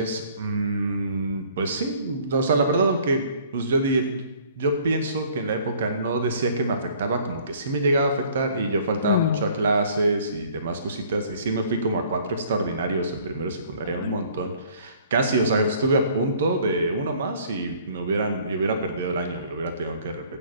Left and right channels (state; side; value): inverted; both; correlation -0.56